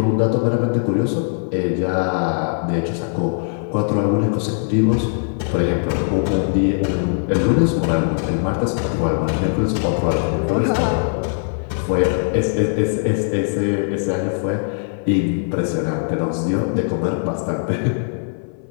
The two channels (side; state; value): right; silent; 60 dB below the other